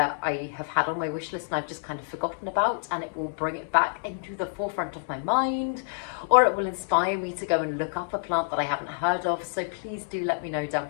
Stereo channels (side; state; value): right; silent; digital silence